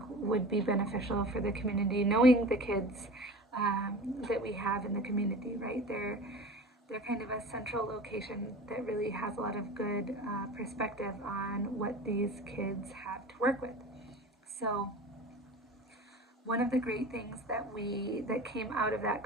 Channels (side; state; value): both; normal; correlation 0.36